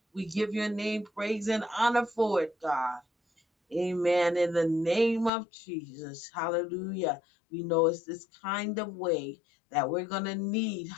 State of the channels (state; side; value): drops out; right; at 5.3 s